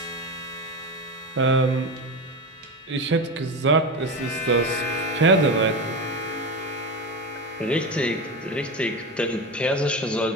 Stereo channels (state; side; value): normal; both; correlation 0.21